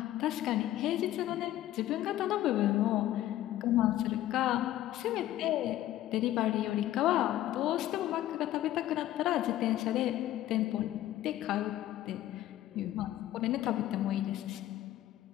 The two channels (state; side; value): quieter; right; 13.7 dB